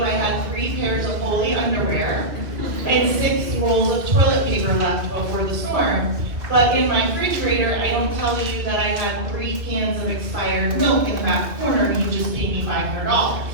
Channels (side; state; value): left; late; 2.2 ms